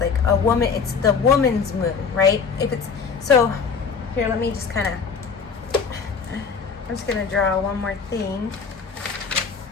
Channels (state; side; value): quieter; right; 5.6 dB